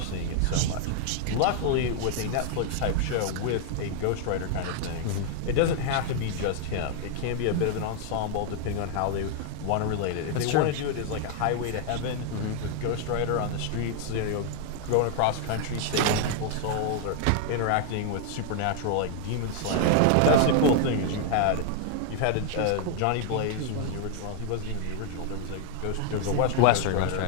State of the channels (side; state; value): both; different; correlation 0.00